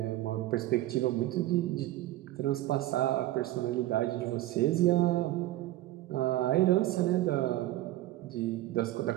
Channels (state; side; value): quieter; left; 15.7 dB